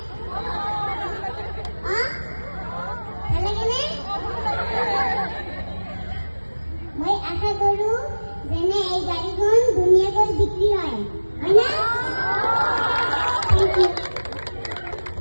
মই আশা কৰো যেনে এই গাড়ীখন ধুনীয়াকৈ বিক্ৰী হয় না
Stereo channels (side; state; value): both; inverted; correlation -1.00